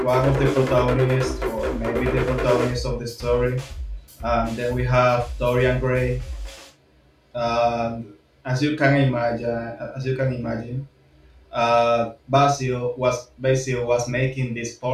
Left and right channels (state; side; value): identical; both; correlation 1.00